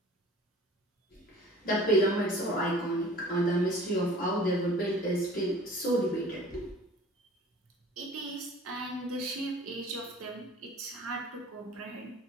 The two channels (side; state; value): both; normal; correlation 0.46